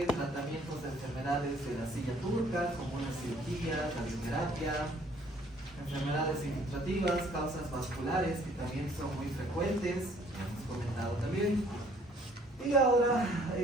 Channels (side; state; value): both; normal; correlation 0.59